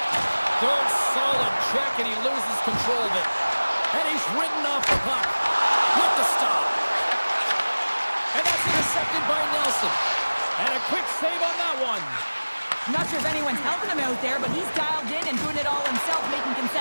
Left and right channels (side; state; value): both; inverted; correlation -1.00